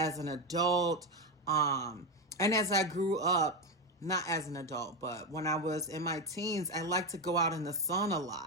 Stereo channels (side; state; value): both; normal; correlation 0.11